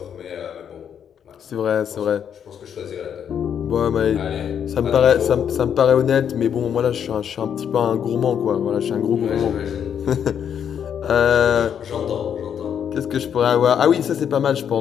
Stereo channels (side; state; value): right; quieter; 8.4 dB